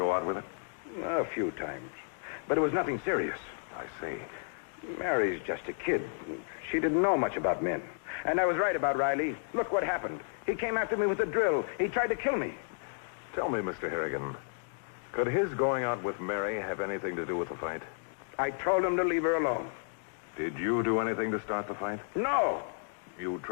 out with it? A few times. But it was nothing serious. I see. Mary's just a kid. She didn't know much about men. And I was right about Riley. Look what happened. He came after me with a drill. He tried to kill me. Tell me, Mr. Harrigan, could his going out with Mary have anything to do with the fight? I told him to leave her alone. Did you do anything to start the fight? No. You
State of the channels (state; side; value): silent; right; digital silence